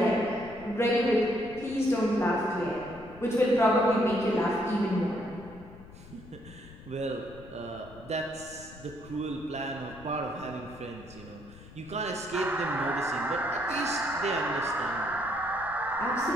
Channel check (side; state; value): left; noise; rumble, 18 dB below the sound